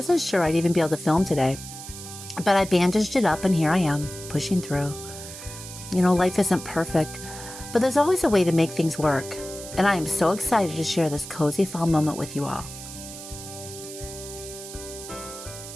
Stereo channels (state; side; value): noise; right; hiss, 12 dB below the sound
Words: sure I'd even be able to film today, but I bandaged it up and here I am, pushing through. You know, life isn't perfect, but there's always a way to make things work, and I am so excited to share this cozy fall moment with you all.